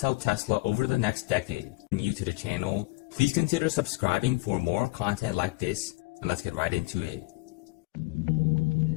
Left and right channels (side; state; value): right; quieter; 23.1 dB